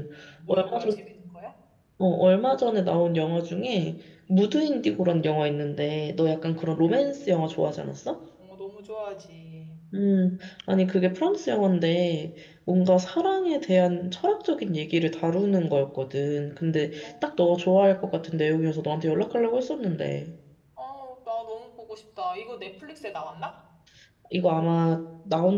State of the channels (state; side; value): identical; both; correlation 1.00